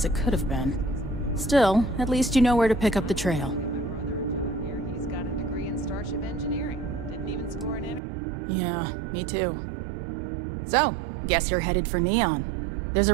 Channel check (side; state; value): left; drops out; at 8.0 s